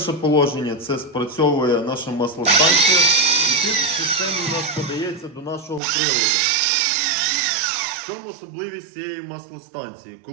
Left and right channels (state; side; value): drops out; left; at 5.8 s